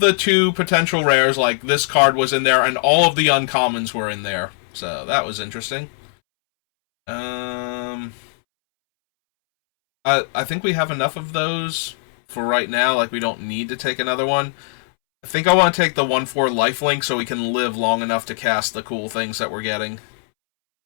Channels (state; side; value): silent; right; 66 dB below the other